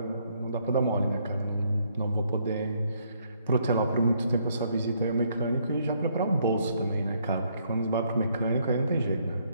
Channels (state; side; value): inverted; both; correlation -0.70